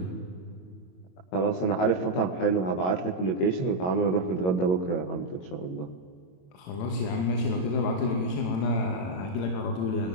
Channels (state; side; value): late; right; 22 ms